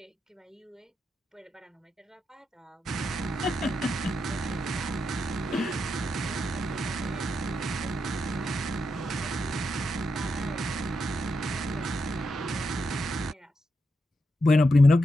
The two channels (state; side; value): normal; both; correlation 0.84